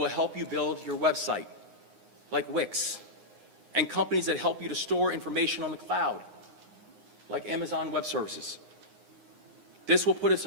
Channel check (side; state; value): left; late; 9.6 ms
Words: help you build your website, like Wix, and companies that help you to store information on the cloud, like Amazon Web Services. This will put us